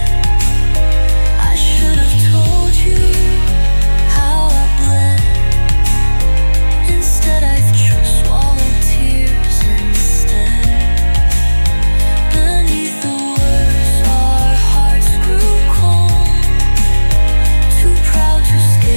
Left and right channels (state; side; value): inverted; both; correlation -1.00